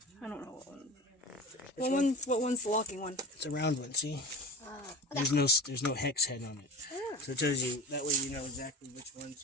I don't know what one. What one's the locking one? It's a round one, see? Okay. There's no hex head on it. So it tells you, that way you know exactly which one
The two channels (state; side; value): normal; both; correlation 0.32